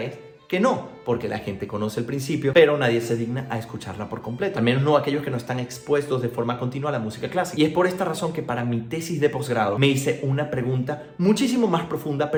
es que no, porque la gente conoce el principio, pero nadie se digna a escucharla por completo. Al menos no aquellos que no están expuestos de forma continua a la música clásica. Y es por esta razón que para mi tesis de posgrado me hice una pregunta muchísimo más profunda,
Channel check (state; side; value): identical; both; correlation 1.00